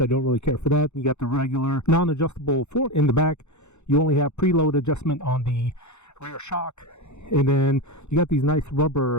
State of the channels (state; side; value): late; right; 0.82 ms